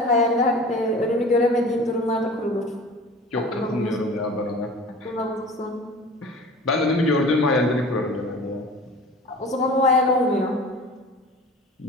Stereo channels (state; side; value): normal; both; correlation 0.41